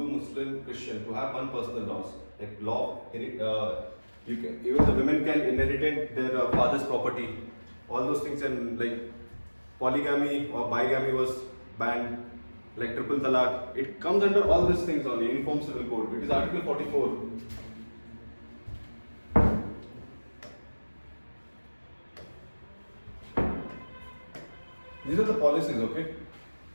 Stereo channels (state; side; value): inverted; both; correlation -1.00